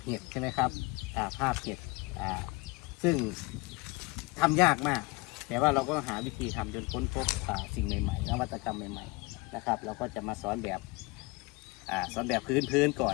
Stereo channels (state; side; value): quieter; right; 25.2 dB